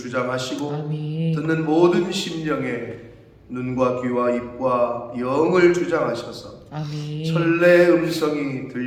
아멘. 듣는 모든 심령에 눈과 귀와 입과 영을 주장하셔서 아멘. 천래의 음성이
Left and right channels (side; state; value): both; identical; correlation 1.00